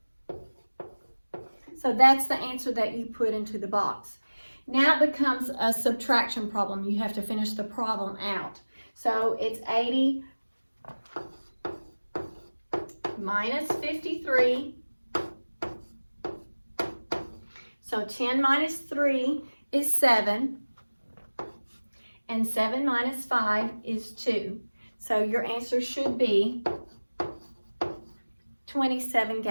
So that's the answer that you put into the box. Now it becomes a subtraction problem. You have to finish the problem out. So it's 80 minus 53. So 10 minus 3 is 7. And 7 minus 5 is 2. So your answer should be 27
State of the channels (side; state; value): both; inverted; correlation -1.00